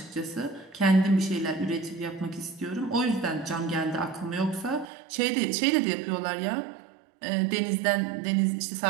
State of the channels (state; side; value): drops out; left; at 4.9 s